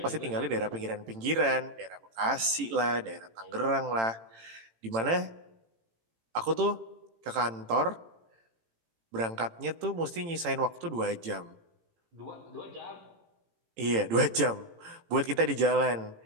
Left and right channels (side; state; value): left; late; 18 ms